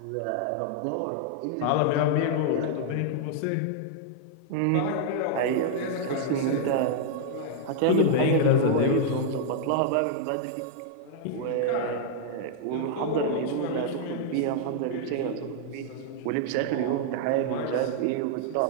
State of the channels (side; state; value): both; different; correlation -0.01